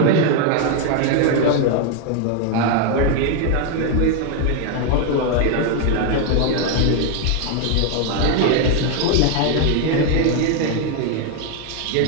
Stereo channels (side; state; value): both; different; correlation 0.00